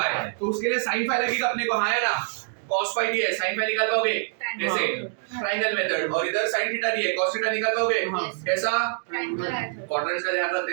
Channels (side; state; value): left; silent; digital silence